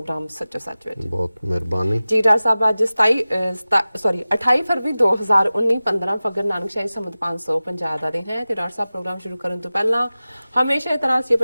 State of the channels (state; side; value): inverted; both; correlation -0.97